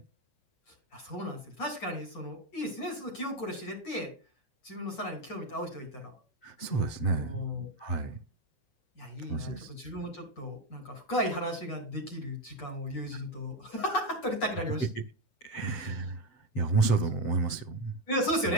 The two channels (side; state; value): right; late; 7.9 ms